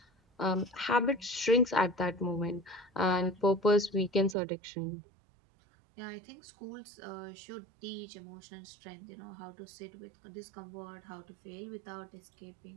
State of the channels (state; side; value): drops out; left; at 4.4 s